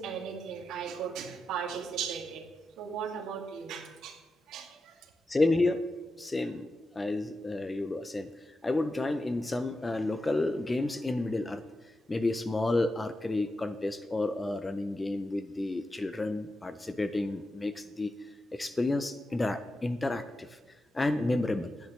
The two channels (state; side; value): normal; both; correlation 0.89